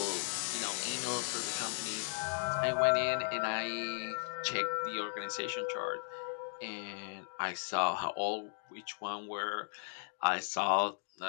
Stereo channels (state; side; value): silent; right; digital silence